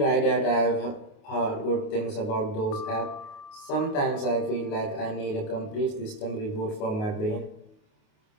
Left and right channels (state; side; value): late; right; 28 ms